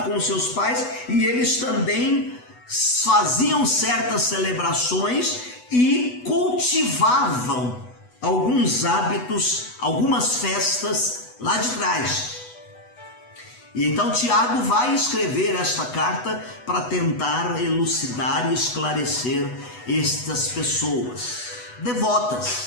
com seus pais e eles também faziam certas celebrações e cultivavam alguns hábitos, algumas festas lá de trás. E então Tiago vai escrever esta carta para tentar elucidar e esclarecer estas pessoas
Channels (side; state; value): right; late; 8.1 ms